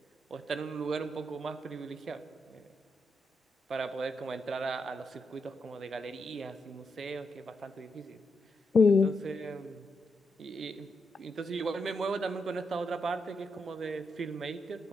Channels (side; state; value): both; normal; correlation 0.82